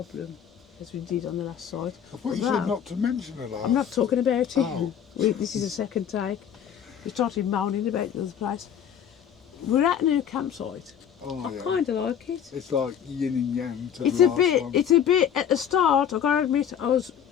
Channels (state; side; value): quieter; right; 8.8 dB